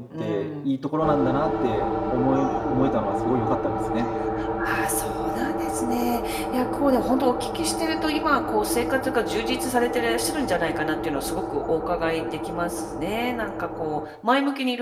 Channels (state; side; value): identical; both; correlation 1.00